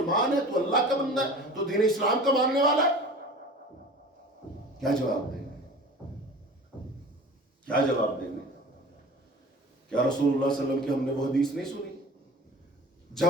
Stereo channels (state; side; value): normal; both; correlation 0.40